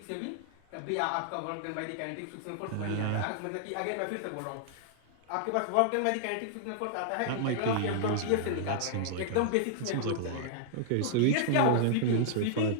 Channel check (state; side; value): different; both; correlation -0.01